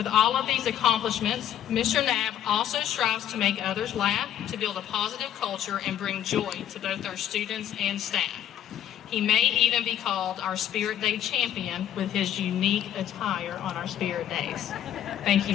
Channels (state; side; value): quieter; right; 10.7 dB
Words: all of these accomplishments, Mr. Knapp also strives to make others laugh, to build a positive culture, and bring joy to both our students and staff. He may even be called our Spirit Day champion with his unique attire on our Spirit Days. Thank you,